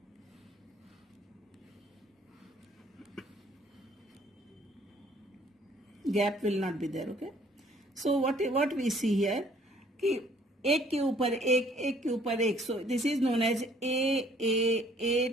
Gap will not be there. Okay. So what we see here कि एक के ऊपर एक के ऊपर एक. So this is known as A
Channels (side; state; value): both; normal; correlation 0.59